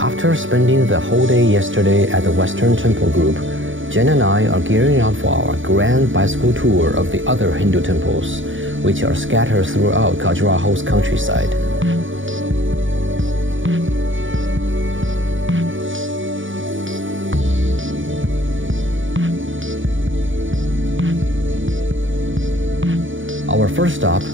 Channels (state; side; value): late; left; 0.57 ms